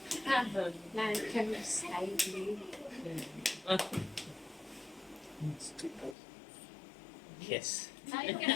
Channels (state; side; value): drops out; right; at 6.2 s